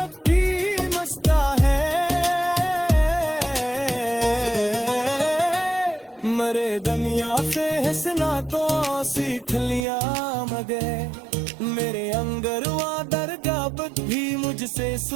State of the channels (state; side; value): drops out; left; at 9.8 s